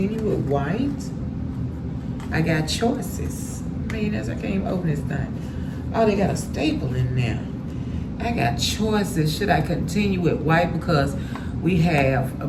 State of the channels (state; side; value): identical; both; correlation 1.00